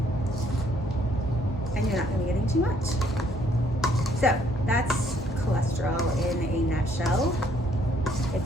and you're not going to be getting too much. So that's cholesterol in a nutshell. If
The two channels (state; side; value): normal; both; correlation 0.66